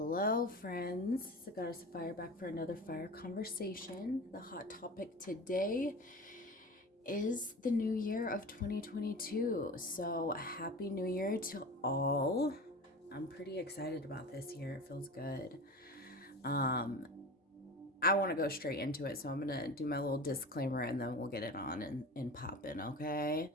friends. It's the Goddess of Fire back for another fire conversation. The hot topic today is the new year of 2022. So, happy new year to all. I'm pretty excited about this year. It feels good. I want to go straight into it, so I'm going to do my little disclaimer and then we'll get it on and pop in, okay?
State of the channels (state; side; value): normal; both; correlation 0.33